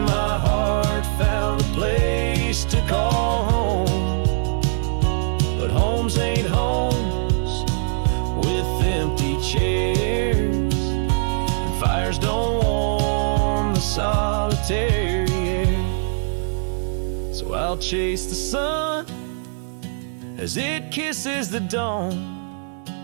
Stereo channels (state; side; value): silent; left; 58 dB below the other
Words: my heart found a place to call home. But homes ain't homes with empty chairs, and fires don't warm the solitary air. So I'll chase the sun as it kisses the dawn,